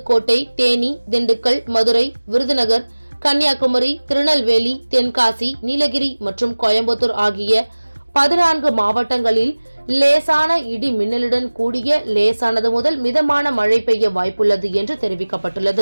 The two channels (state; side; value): inverted; both; correlation -1.00